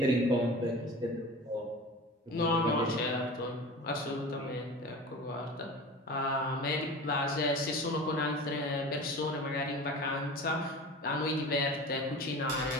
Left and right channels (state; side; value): normal; both; correlation 0.35